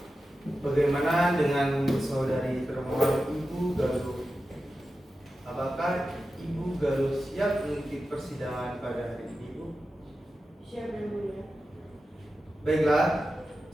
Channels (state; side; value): normal; both; correlation 0.92